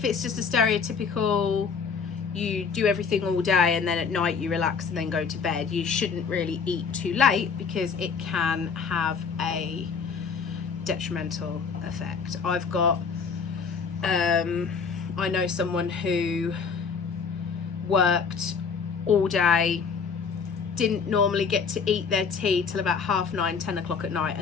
it's just a stereotypical, you do everything all day and then at night you relax and then go to bed, you shouldn't really eat too late, because it can have a detrimental effect. I've got I know someone who worked all day, didn't normally get to eat their tea till about 9:30, 10 o'clock at night,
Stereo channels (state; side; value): quieter; right; 5.7 dB